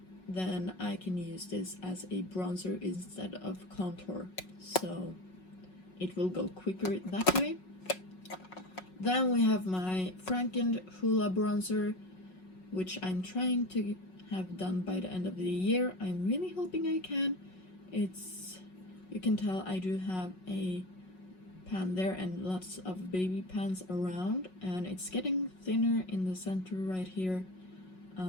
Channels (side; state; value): right; late; 5.4 ms